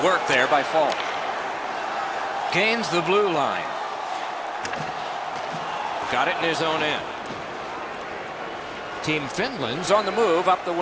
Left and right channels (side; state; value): both; identical; correlation 1.00